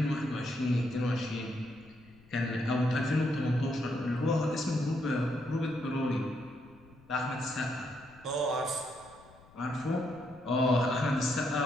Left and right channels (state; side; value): noise; left; rumble, 25 dB below the sound